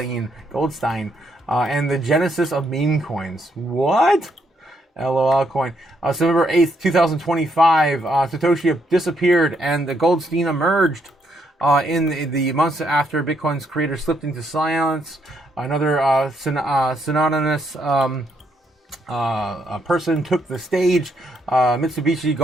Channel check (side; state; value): both; normal; correlation 0.75